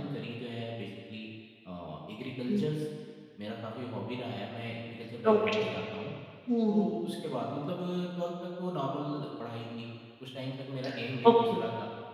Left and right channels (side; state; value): both; identical; correlation 1.00